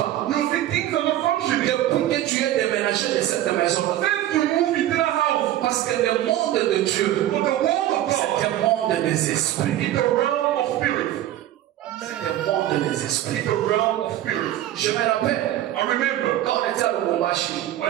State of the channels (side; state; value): left; quieter; 13.2 dB